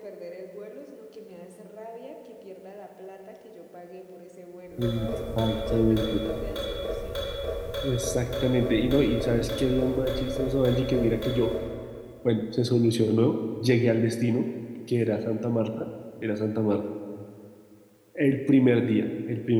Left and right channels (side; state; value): both; identical; correlation 1.00